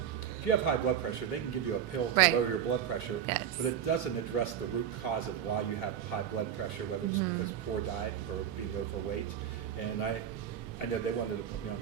if you have high blood pressure, they can give you a pill to lower your blood pressure, but it doesn't address the root cause of why you have high blood pressure, whether it's because of poor diet or being overweight. And I know they wanted to put me on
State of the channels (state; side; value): quieter; left; 9.3 dB